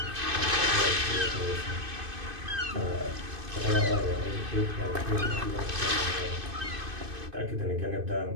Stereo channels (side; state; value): left; late; 2.6 ms